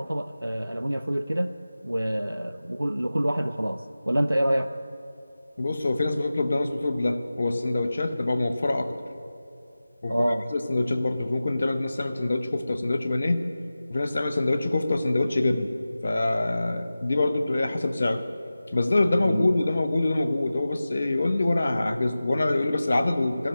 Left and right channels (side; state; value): both; inverted; correlation -0.96